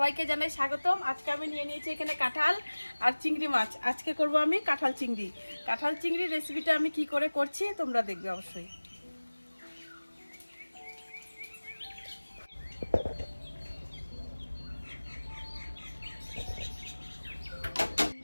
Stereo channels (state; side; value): inverted; both; correlation -1.00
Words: জানাই স্বাগতম। আজকে আমি নিয়ে নিয়েছি এখানে কাঁঠাল আর চিংড়ি মাছ। আজকে করব আমি কাঁঠাল চিংড়ি। কাঁঠাল চিংড়ির রেসিপিটা আমি কি করে করছি তোমরা দেখবে অবশ্যই।